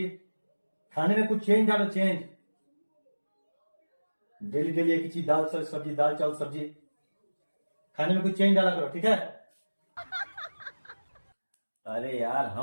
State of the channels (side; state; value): both; inverted; correlation -1.00